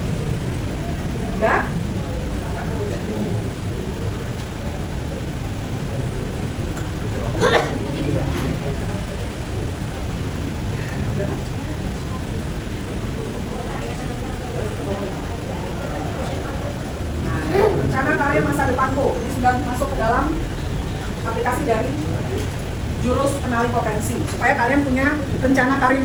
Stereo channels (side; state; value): both; identical; correlation 1.00